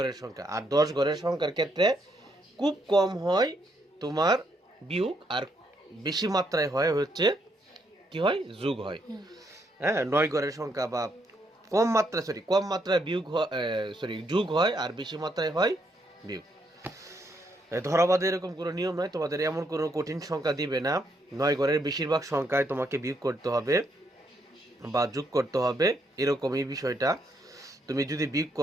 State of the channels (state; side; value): normal; both; correlation 0.75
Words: সংখ্যা আর 10 ঘরের সংখ্যার ক্ষেত্রে খুব কম হয় তোমার বিয়োগ আর বেশি মাত্রায় হয় হচ্ছে কি হয় যোগ হয় হ্যাঁ 9 ঘরের সংখ্যা বা কম মাত্রায় বিয়োগ যোগ হয় আর বেশি মাত্রায় হয় বিয়োগ ধরাবাঁধে এরকম কোনো নিয়ম নয় তোমাদের এমন কোনো কঠিন সংখ্যা দিবে না 9 ঘরের বেশিরভাগ সংখ্যায় তোমাকে বিয়োগ করতে হবে বা যোগ করতে হবে এরকম এই বিষয়টা তুমি যদি বিয়োগ